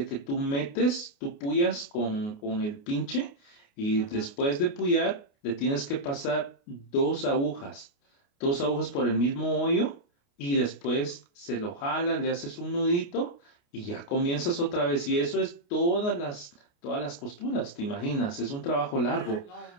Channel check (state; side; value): late; right; 29 ms